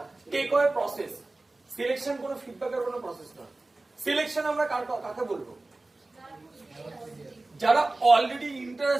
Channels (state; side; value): quieter; left; 3.0 dB